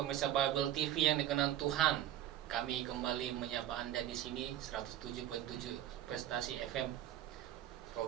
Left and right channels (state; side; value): quieter; left; 12.2 dB